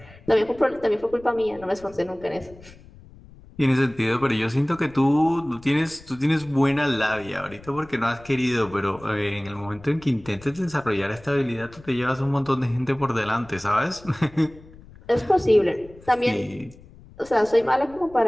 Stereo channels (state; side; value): noise; left; rumble, 22 dB below the sound